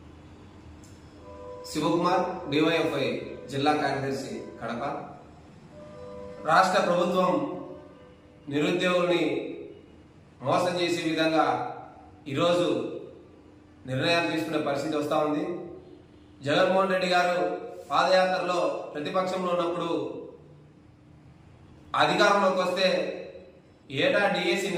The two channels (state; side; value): identical; both; correlation 1.00